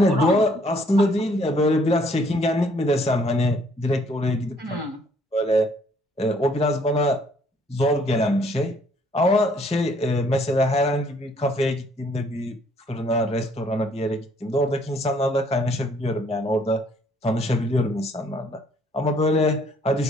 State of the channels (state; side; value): normal; both; correlation 0.64